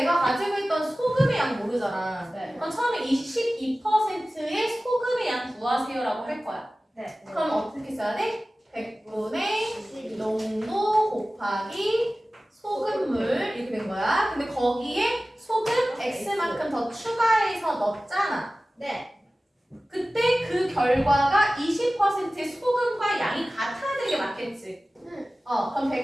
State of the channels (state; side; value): normal; both; correlation 0.96